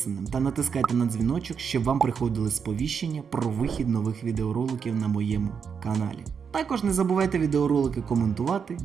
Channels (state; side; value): quieter; left; 6.6 dB